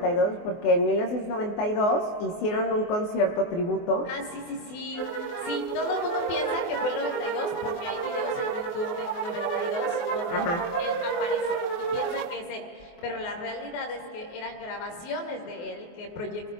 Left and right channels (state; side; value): late; right; 24 ms